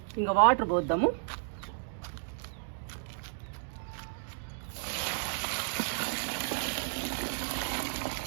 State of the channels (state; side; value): silent; left; digital silence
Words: ఇంకా వాటర్ పోద్దాము.